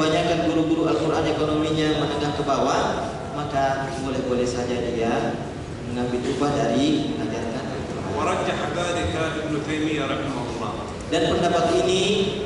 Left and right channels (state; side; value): identical; both; correlation 1.00